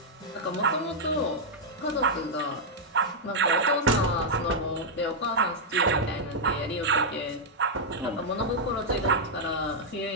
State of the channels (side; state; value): both; normal; correlation -0.05